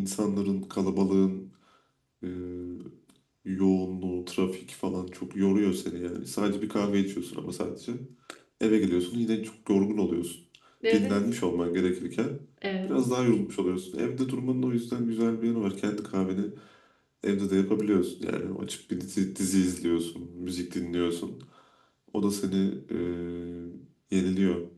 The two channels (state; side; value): identical; both; correlation 1.00